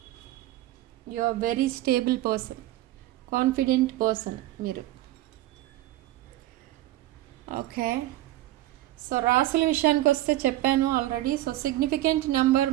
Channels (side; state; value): left; quieter; 15.4 dB